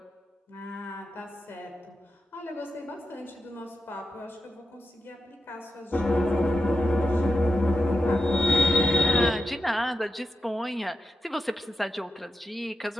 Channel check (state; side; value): normal; both; correlation 0.88